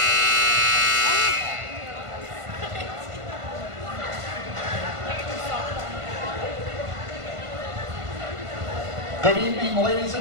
Good evening, ladies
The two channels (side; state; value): left; late; 1.5 ms